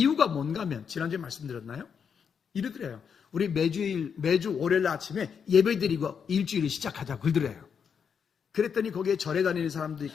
뭔가 하면 지난주에 말씀드렸나요? 이러더래요. 우리 매주 월요일 아침에 예배 드리고 일주일을 시작하자 그러더래요. 그랬더니 거기에 절에 다니는 사람도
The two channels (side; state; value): right; quieter; 6.9 dB